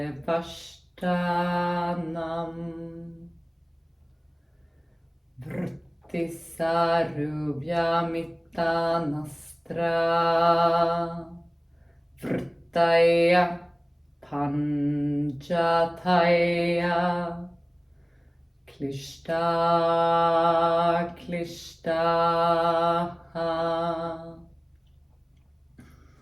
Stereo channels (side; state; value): both; identical; correlation 1.00